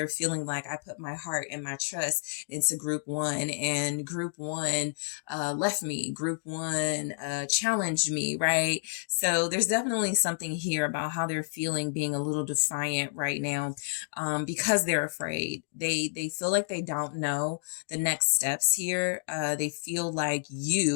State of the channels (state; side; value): silent; right; digital silence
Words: feeling like I put my heart and my trust into group one, and group one left me. Group one challenged me, right? So there's definitely something here about how they're feeling, being a little defiant right now, because they're afraid. They feel like they don't know the next steps here. They feel like